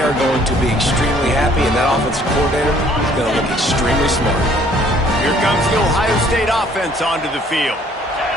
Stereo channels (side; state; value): both; normal; correlation 0.59